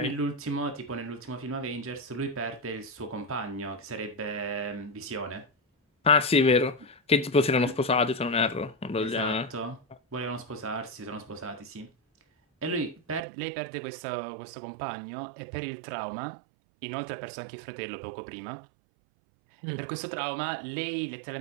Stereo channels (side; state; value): left; drops out; at 13.2 s